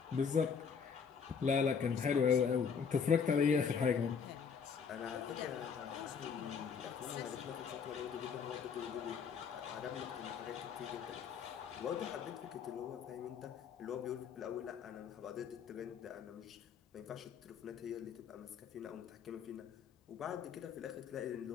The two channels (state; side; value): quieter; right; 6.4 dB